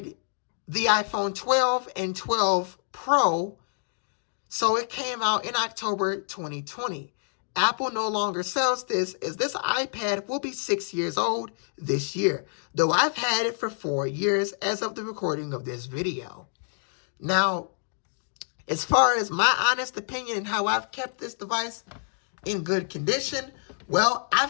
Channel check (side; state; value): right; silent; digital silence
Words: the iPhone 12 and 12 Pro. So it came out in October 2020. Apple no longer sells this, as this iPad will be 6 years old this year, though I've had it for 4 years as of the recording of this video. Now, as far as my honest opinion and how I've kept this device in good condition, well,